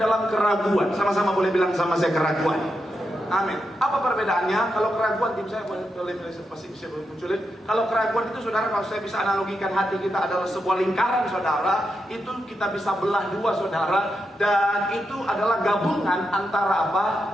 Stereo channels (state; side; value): normal; both; correlation 0.85